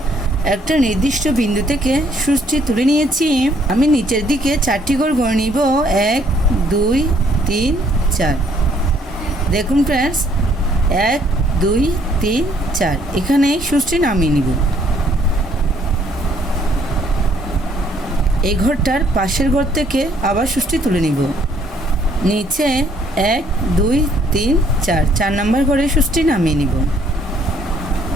একটা নির্দিষ্ট বিন্দু থেকে সূচটি তুলে নিয়েছি। আমি নিচের দিকে 4টি ঘর গড়ে নিব, 1 2 3 4। দেখুন ফ্রেন্ডস, 1 2 3 4 এখানে সূচটি নামিয়ে নিব। এই ঘরটার পাশের ঘর থেকে আবার সূচটি তুলে নিব। নিচে 1 2 3 4 4 নম্বর ঘরে সূচটি নামিয়ে নিব।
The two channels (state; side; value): normal; both; correlation 0.65